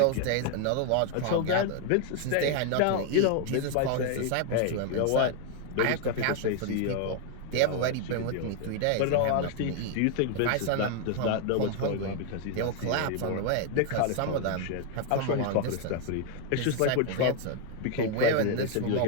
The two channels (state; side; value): different; both; correlation 0.00